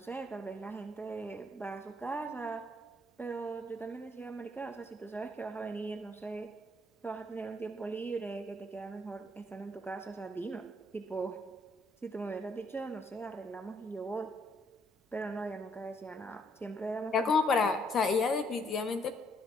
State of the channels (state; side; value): normal; both; correlation 0.70